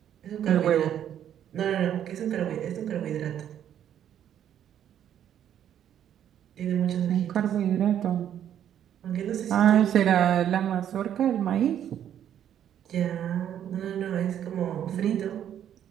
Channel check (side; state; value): left; quieter; 10.1 dB